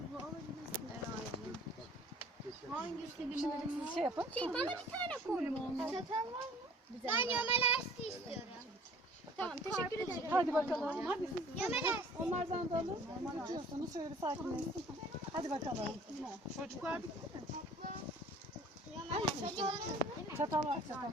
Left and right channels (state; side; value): normal; both; correlation 0.51